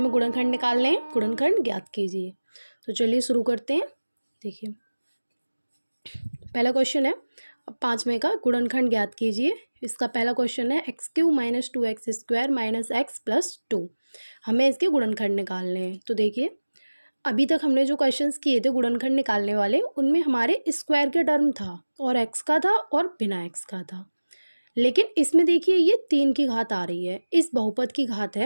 गुणनखंड निकालने हैं। गुणनखंड ज्ञात कीजिए। तो चलिए शुरू करते हैं। देखिए, पहला क्वेश्चन है 5वें का, गुणनखंड ज्ञात कीजिए। इसका पहला क्वेश्चन है x³ - 2x² - x+2। हमें इसके गुणनखंड निकालने हैं। तो देखिए, अभी तक हमने जो क्वेश्चंस किए थे गुणनखंड निकालने वाले, उनमें हमारे स्क्वायर के टर्म था और x का था और बिना x का था। लेकिन इसमें देखिए, ये 3 की घात आ रही है। इस बहुपद की घात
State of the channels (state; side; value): inverted; both; correlation -1.00